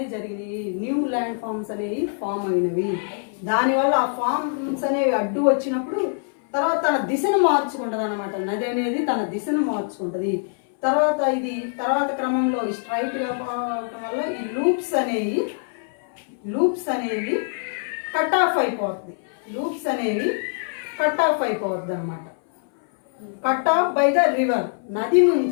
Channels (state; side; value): silent; right; 60 dB below the other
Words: జరిగినాయి, న్యూ ల్యాండ్ ఫార్మ్స్ అనేవి ఫామ్ అయినవి. దానివల్ల ఆ ఫార్మ్స్ అనేవి అడ్డు వచ్చినప్పుడు తర్వాత తన దిశను మార్చుకుంటుంది అనమాట. నది అనేది తన దిశను మార్చుకుంటుంది. తర్వాత క్రమంలో స్ట్రైట్గా పోవడం వల్ల ఈ లూప్స్ అనేవి కట్ ఆఫ్ అయిపోతుంది. అనమాట. Cut off by the river. నది